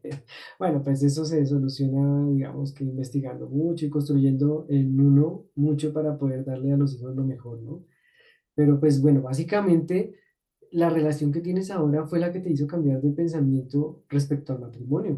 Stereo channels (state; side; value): identical; both; correlation 1.00